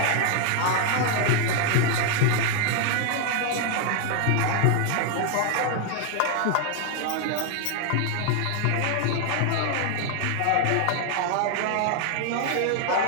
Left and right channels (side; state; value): both; different; correlation 0.00